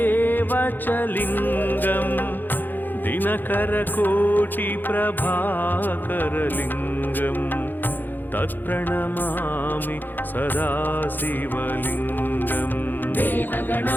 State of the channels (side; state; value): right; late; 0.089 ms